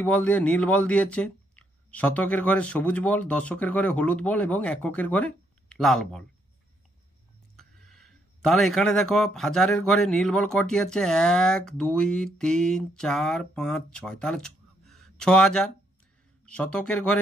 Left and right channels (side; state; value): both; normal; correlation 0.73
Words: বল দিয়ে, নীল বল দিয়েছে। শতকের ঘরে সবুজ বল, দশকের ঘরে হলুদ বল এবং এককের ঘরে লাল বল। তাহলে এখানে দেখো হাজারের ঘরে নীল বল কটি আছে, 1 2 3 4 5 6, তাহলে 6000। শতকের